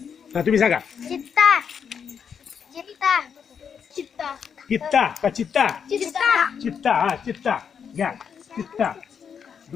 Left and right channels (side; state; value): right; quieter; 7.1 dB